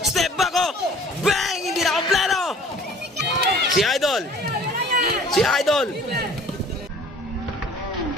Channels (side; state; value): both; normal; correlation 0.50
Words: Step back, oh. Bang! Hindi na kompleto. Si Idol.